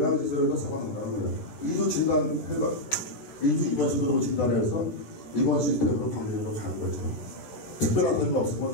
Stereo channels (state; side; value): late; right; 14 ms